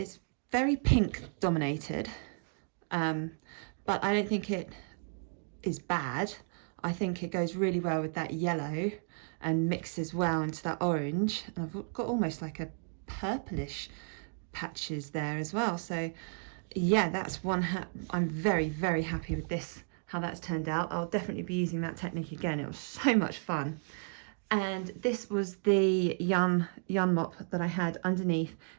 very pink dominated, but I don't think it is bad. I think it goes really well with that yellow and mixes well into that orange, and I've got almost like a purplish patches there as well. So yeah, that's one I'm very happy with this, how that's turned out. I'll definitely be using that technique again. It was so much fun. And this was the yarn mop that I had underneath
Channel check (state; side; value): silent; left; 56 dB below the other